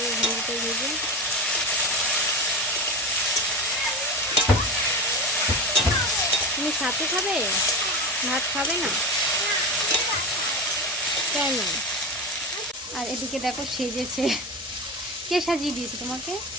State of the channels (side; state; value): both; normal; correlation 0.24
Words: ভেন্ডিটা ভেজে। তুমি সাথে খাবে, ভাত খাবে না কেন? আর এদিকে দেখো সেজেছে, কে সাজিয়ে দিয়েছে তোমাকে?